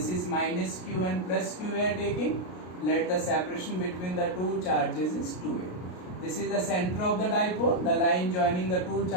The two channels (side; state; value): right; late; 33 ms